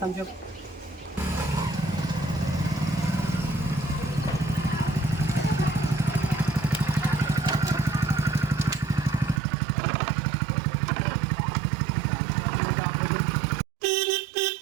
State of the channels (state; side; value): drops out; left; at 9.4 s